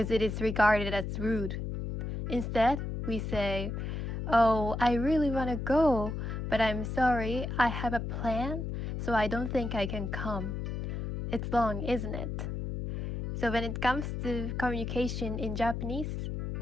it is regarded as rude. Instead, we say, "Oh, I really want to go, but I'm sorry, I have a plan, so I don't think I can come." It's long, isn't it? So when it comes to communication in Japanese,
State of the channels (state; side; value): noise; left; hum, 4 dB below the sound